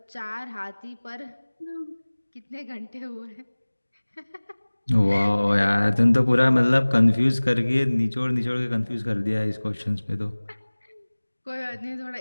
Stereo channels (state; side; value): inverted; both; correlation -1.00